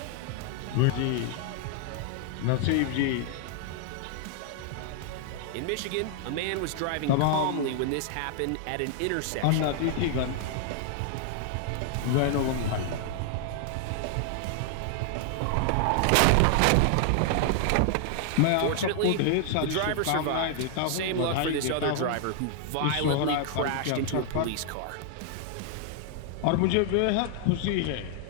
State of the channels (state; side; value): different; both; correlation 0.00